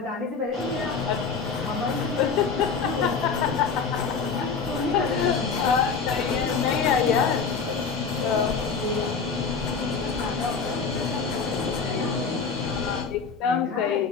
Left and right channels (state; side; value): quieter; right; 5.3 dB